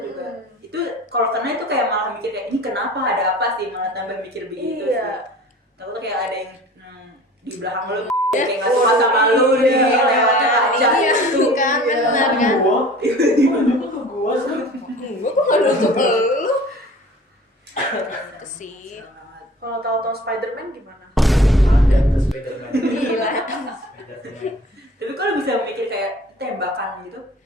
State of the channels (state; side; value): normal; both; correlation 0.45